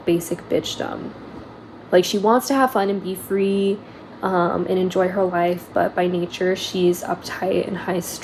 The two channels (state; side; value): identical; both; correlation 1.00